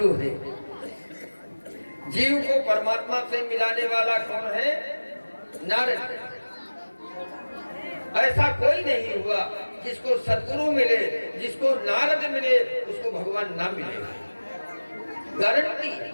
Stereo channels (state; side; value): inverted; both; correlation -1.00